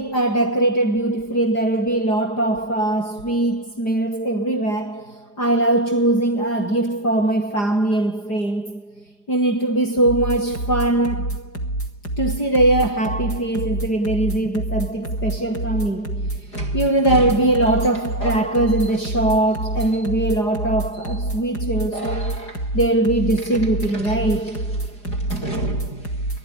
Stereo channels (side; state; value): right; late; 4.9 ms